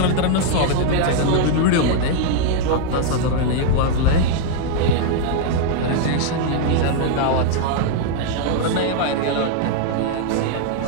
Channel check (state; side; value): different; both; correlation -0.01